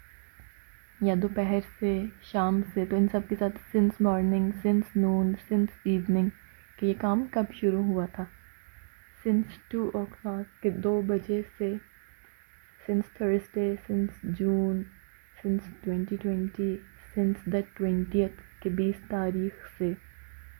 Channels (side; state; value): left; silent; digital silence